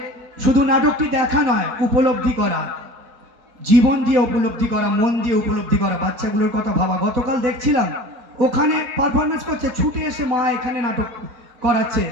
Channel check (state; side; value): late; left; 4.2 ms